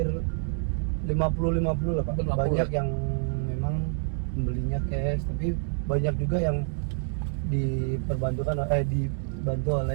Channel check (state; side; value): silent; left; digital silence